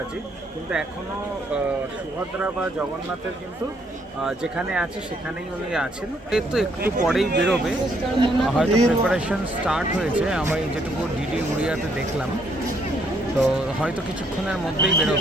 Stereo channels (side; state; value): both; normal; correlation 0.70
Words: কিন্তু এখনও সুভদ্রা বা জগন্নাথের কিন্তু যেখানে আছে সেখানেই উনি আছেন। এর তো একটু পরেই বেরোবে, হয়তো প্রিপারেশন স্টার্ট হয়েছে, আমি যেটুকু ডিডি উড়িয়াতে দেখলাম। তো হয়তো কিছুক্ষণের মধ্যেই